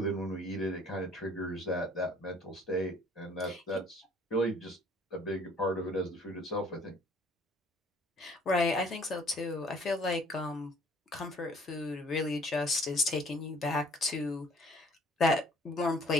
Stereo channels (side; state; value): both; normal; correlation 0.57